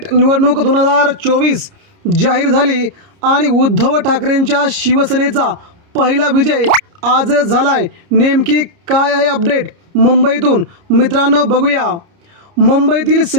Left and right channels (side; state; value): left; late; 30 ms